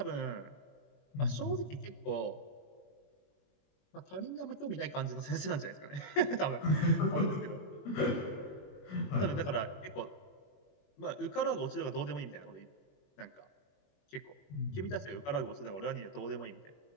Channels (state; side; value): late; right; 21 ms